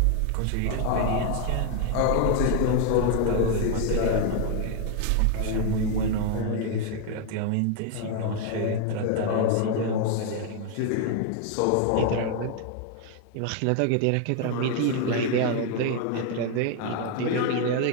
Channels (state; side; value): different; both; correlation 0.00